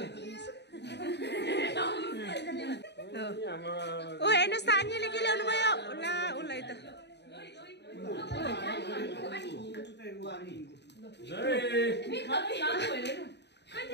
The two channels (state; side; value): late; right; 0.50 ms